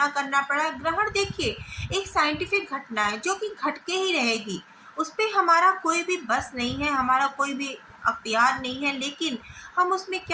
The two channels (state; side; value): identical; both; correlation 1.00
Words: करना पड़ा। ग्रहण देखिए, एक साइंटिफिक घटना है जो कि घट के ही रहेगी, उस पर हमारा कोई भी बस नहीं है, हमारा कोई भी अख्तियार नहीं है। लेकिन हम उसमें